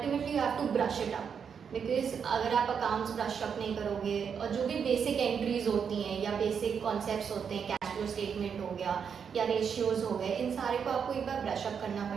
you have to brush it up, because अगर आप अकाउंट्स ब्रश अप नहीं करोगे और जो भी बेसिक एंट्रीज होती हैं या बेसिक कॉन्सेप्ट्स होते हैं, कैश फ्लो स्टेटमेंट हो गया या रेशियोज हो गए, इन सारे को आपको एक बार ब्रश अप करना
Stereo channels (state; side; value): quieter; left; 6.9 dB